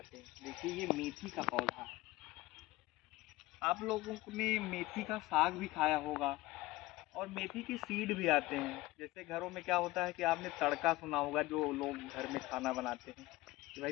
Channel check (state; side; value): quieter; right; 19.2 dB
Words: हैं। देखिए, ये मेथी का पौधा है। आप लोगों ने मेथी का साग भी खाया होगा और मेथी के सीड भी आते हैं। जैसे घरों में क्या होता है कि आपने तड़का सुना होगा, जो लोग घर में खाना बनाते हैं कि